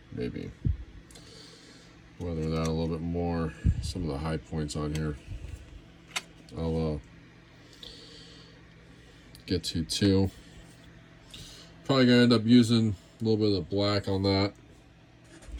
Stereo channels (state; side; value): identical; both; correlation 1.00